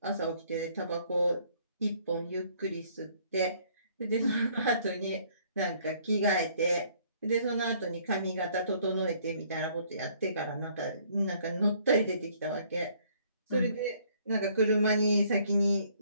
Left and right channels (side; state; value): both; inverted; correlation -0.62